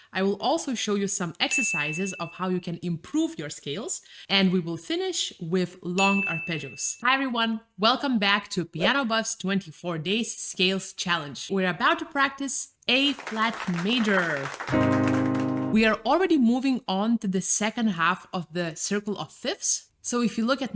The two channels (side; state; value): both; identical; correlation 1.00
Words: I will also show you some exercises of how you can improve your scales, and we will finish with long arpeggios. Hi everyone, welcome back to PianoBuffs 24 Days Scales Challenge. We're about to practice A flat major. We are already moving on to the second half of the circle of fifths. So if you look at